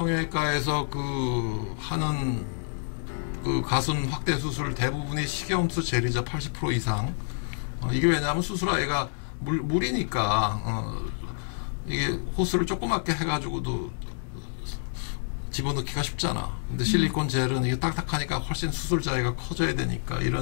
하는 가슴 확대 수술 대부분이 식염수 젤이죠. 80% 이상. 이게 왜냐하면 수술아이가 물이니까 이게 호스를 조그맣게 해가지고도 집어넣기가 쉽잖아. 근데 실리콘 젤은 이게 딱딱하니까 훨씬 수술 자위가 커져야 되니까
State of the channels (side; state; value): right; silent; digital silence